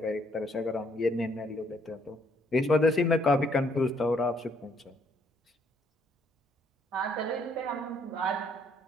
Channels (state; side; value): normal; both; correlation 0.67